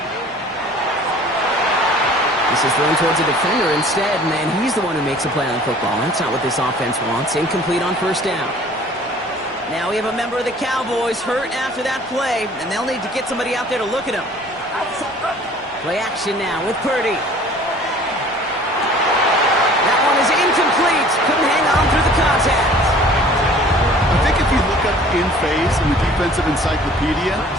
This is thrown towards a defender instead, man. He's the one who makes a play on football. That's not what this offense wants. Incomplete on 1st down. Now we have a member of the Cowboys hurt after that play, and they'll need to get somebody out there to look at him. Play action now with Purdy. That one is incomplete. Couldn't hang on through the contact. I think if you look up in phase in the defensive encyclopedia,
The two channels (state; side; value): normal; both; correlation 0.50